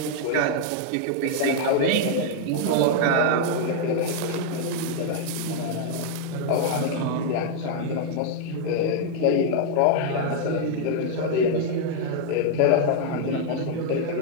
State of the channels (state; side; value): different; both; correlation 0.00